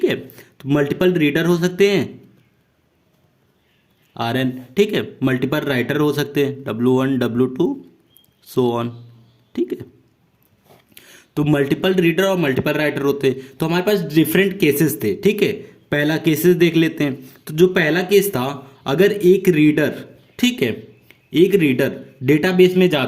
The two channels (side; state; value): both; identical; correlation 1.00